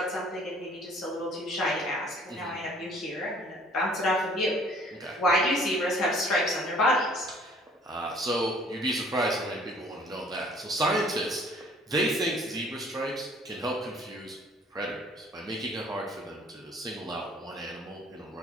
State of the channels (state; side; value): normal; both; correlation 0.55